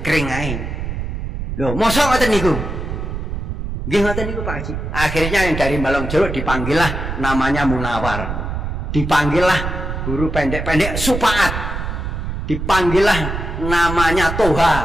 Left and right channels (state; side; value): noise; right; rumble, 4 dB below the sound